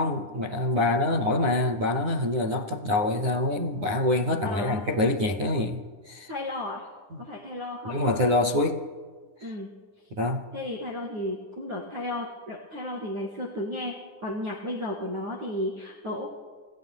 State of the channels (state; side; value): late; left; 9.9 ms